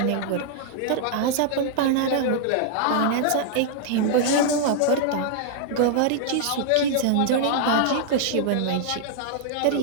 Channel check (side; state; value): both; different; correlation -0.01